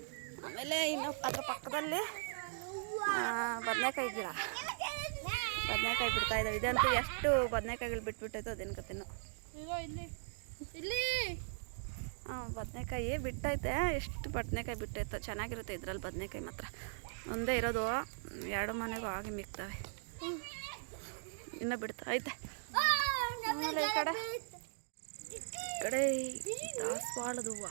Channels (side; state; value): left; silent; digital silence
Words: ಆಮೇಲೆ ಇನ್ನು ಅದ್ರ ಪಕ್ಕದಲ್ಲಿ ಬದನೆಕಾಯಿ ಗಿಡ. ಬದನೆಕಾಯಿ ಬಿಡ್ತಾ ಇದ್ದಾವೆ. ಇದಂತೂ ಎಷ್ಟು ಬದನೆಕಾಯಿಗಳು ಬಿಟ್ಬಿಟ್ಟೈತೋ ಅದೇನು ಕತೆನೋ. ಬದನೆಕಾಯಿ ಬಿಟ್ಟೈತೆ. ಎಷ್ಟು ಬದನೆಕಾಯಿ ಬಿಟ್ಟೈತೋ. ಚೆನ್ನಾಗಿರುತ್ತೆ ಇದ್ರಲ್ಲಿ ಬದನೆಕಾಯಿ ಮಾತ್ರ. ಒಂದೇ ಇರೋದು, 2 ಮನೆಗೂ ಆಗಿ ಮಿಕ್ತವೆ. ಇನ್ನೂ ಬಿಡ್ತಾ ಐತೆ. ಆಮೇಲೆ ಈ ಕಡೆ ದಾಸವಾಳದ ಹೂವು,